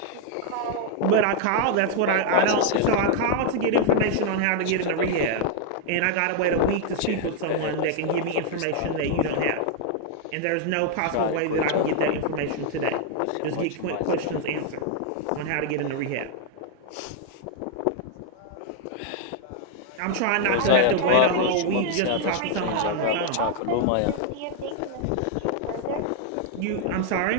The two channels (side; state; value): both; different; correlation 0.00